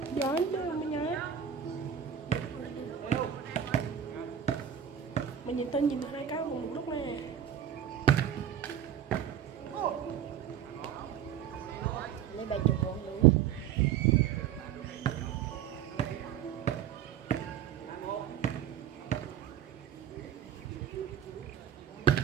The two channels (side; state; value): left; quieter; 9.2 dB